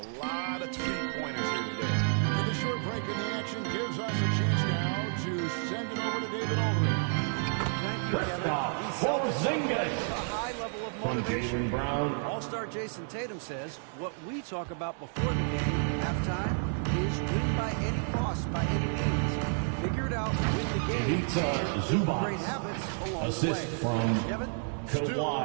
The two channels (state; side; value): silent; left; 57 dB below the other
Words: lot of three-pointers here today. And the short break in the action gives us a chance now to send it over to David Aldridge. Thank you, Kevin. Porzingis. A high level of From motivation. Jaylen Brown. All-star Jason Tatum says what we talk about before the game, halftime, is win by any cost, by any means. Figure it out, win the game. Pizza Zubac. Great habits along Assist the way. from Kevin?